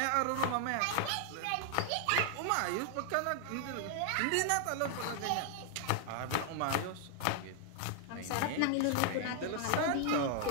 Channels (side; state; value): both; different; correlation 0.00